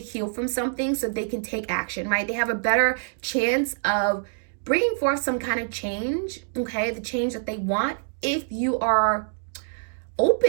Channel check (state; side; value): silent; left; digital silence